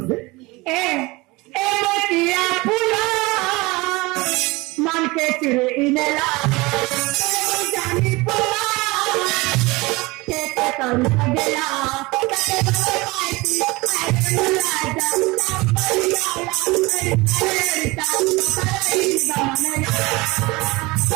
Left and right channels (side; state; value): left; quieter; 23.1 dB